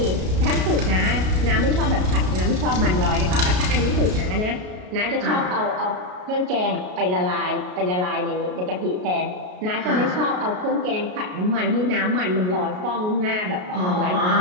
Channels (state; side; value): late; left; 33 ms